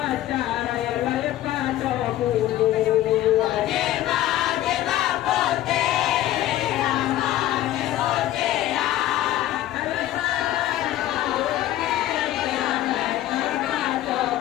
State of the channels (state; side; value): quieter; right; 13.9 dB